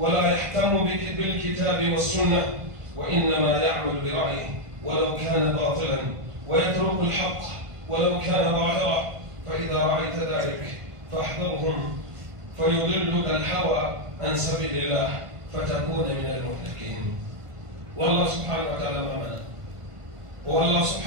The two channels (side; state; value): left; late; 1.5 ms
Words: يهتم بالكتاب والسنة، وإنما يعمل برأيه ولو كان باطلا، ويترك الحق ولو كان ظاهرا. فإذا رأيت ذلك فاحذرهم، فيضلك الهوى عن سبيل الله فتكون من المهلكين. والله سبحانه وتعالى معنا، والله